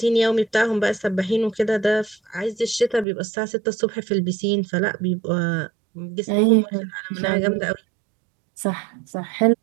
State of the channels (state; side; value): drops out; left; at 3.1 s